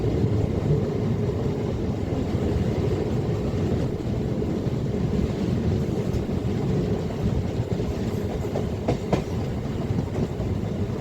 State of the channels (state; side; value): identical; both; correlation 1.00